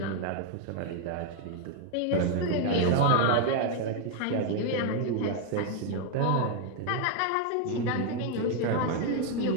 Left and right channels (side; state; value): both; different; correlation 0.01